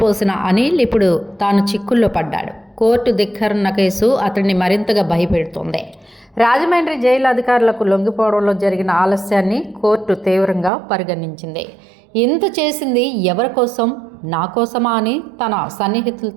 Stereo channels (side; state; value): left; drops out; at 10.7 s